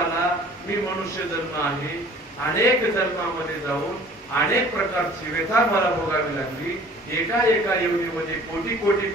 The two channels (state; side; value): normal; both; correlation 0.50